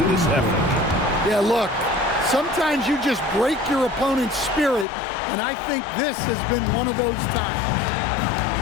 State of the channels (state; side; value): drops out; right; at 4.9 s